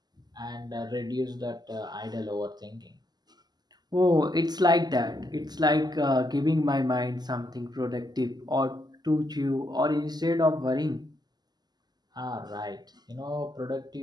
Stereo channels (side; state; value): left; late; 0.20 ms